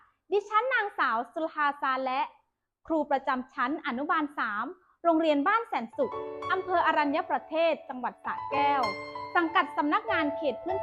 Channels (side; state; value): both; identical; correlation 1.00